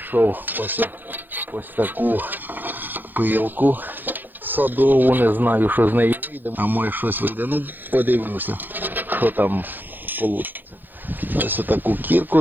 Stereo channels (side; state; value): left; late; 0.089 ms